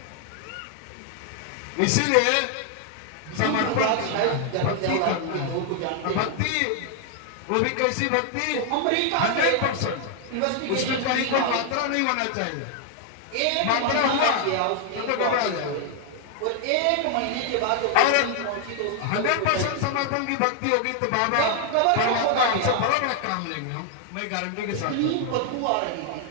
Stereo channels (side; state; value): both; different; correlation 0.00